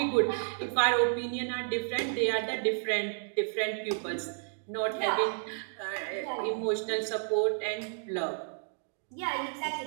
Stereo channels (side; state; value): left; silent; digital silence